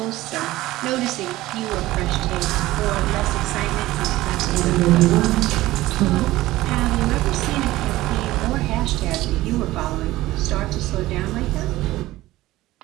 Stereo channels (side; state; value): left; quieter; 17.1 dB